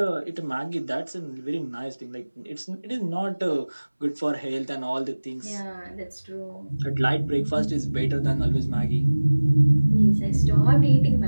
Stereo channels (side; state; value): both; inverted; correlation -1.00